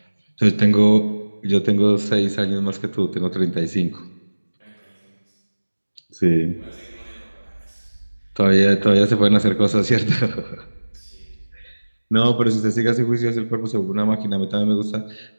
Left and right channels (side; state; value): both; inverted; correlation -1.00